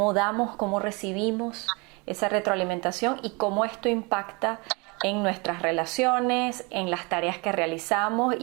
damos, cómo recibimos esa retroalimentación y cómo esto impacta en nuestras relaciones, en las tareas que realizamos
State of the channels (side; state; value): left; quieter; 28.9 dB